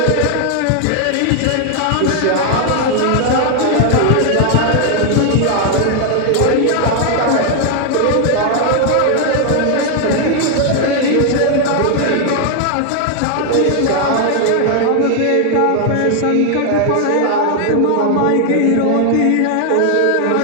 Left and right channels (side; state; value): both; different; correlation 0.00